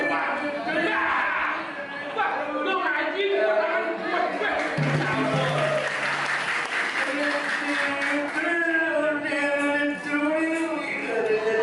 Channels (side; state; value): both; identical; correlation 1.00